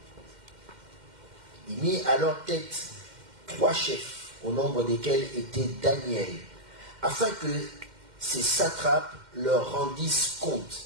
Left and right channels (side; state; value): left; late; 2.1 ms